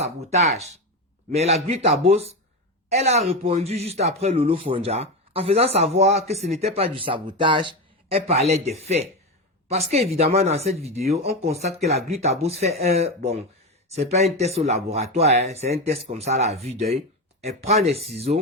mais la Gluta Boss, elle a répondu juste après Lolo Fonja en faisant savoir que ce n'était pas du sabotage, elle parlait des faits. Parce qu'évidemment, dans cette vidéo, on constate que la Gluta Boss fait c'est pas un test au laboratoire, hein, c'est un test comme ça à la vue d'œil. Elle prend des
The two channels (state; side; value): normal; both; correlation 0.17